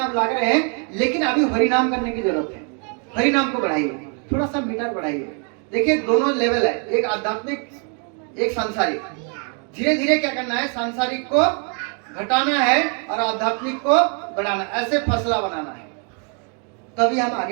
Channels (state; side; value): quieter; left; 39.4 dB